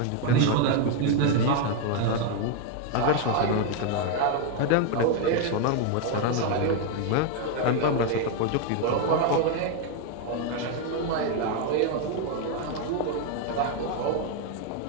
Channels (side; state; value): both; different; correlation 0.01